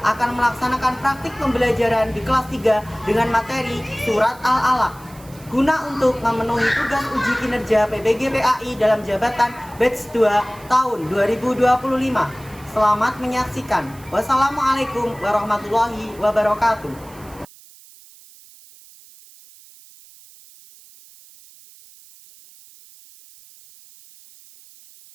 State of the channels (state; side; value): noise; right; hiss, 23 dB below the sound